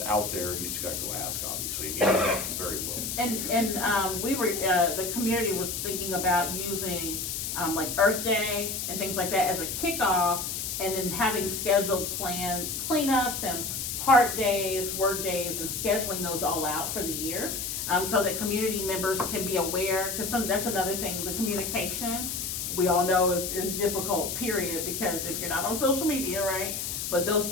out there, you just gotta go ask, obviously, and you know that very well. And we were, the community was thinking about using, like Earth Day and things like that as a kickoff, and then having scheduled planned cleanups and park days, work days, and scheduling those all out for the year, so that community members can be aware, because that's another thing, the communication, we all know is difficult, period, because if you're not on social media, right? But those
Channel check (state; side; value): noise; left; hiss, 3 dB below the sound